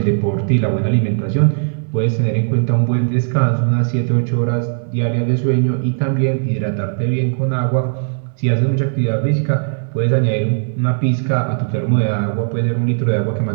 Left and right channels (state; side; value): silent; left; digital silence